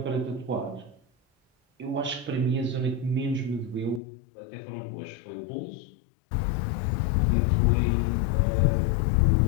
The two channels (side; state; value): right; drops out; at 4.0 s